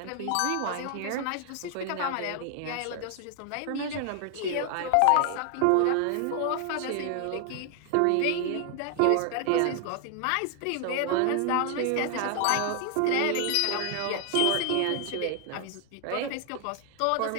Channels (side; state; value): both; different; correlation 0.00